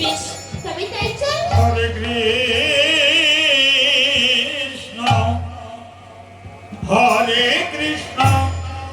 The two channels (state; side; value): identical; both; correlation 1.00